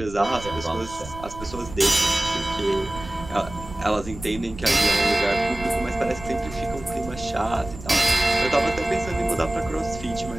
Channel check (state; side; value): noise; right; rumble, 14 dB below the sound